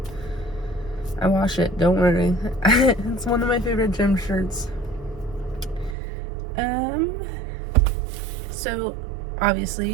I wash it, don't worry. It's one of my favorite gym shirts. So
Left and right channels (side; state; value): left; drops out; at 6.0 s